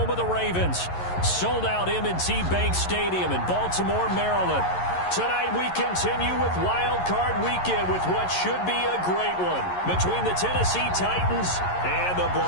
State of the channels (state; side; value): late; right; 11 ms